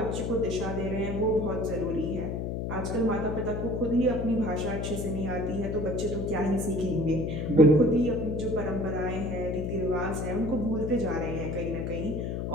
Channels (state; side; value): noise; left; hum, 2 dB below the sound